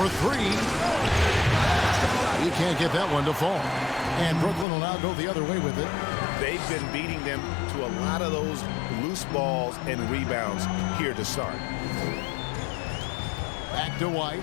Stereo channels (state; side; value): drops out; right; at 4.7 s